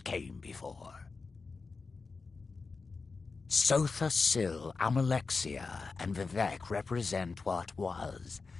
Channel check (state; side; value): quieter; right; 4.3 dB